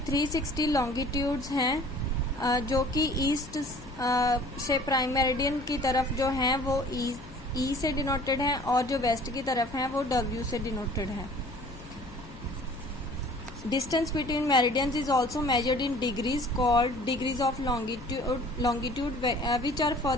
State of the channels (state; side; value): noise; left; hum, 18 dB below the sound